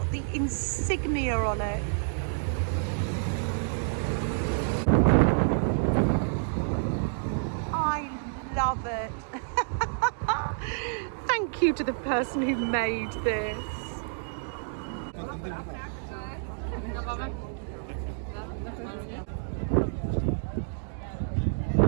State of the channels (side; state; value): left; silent; digital silence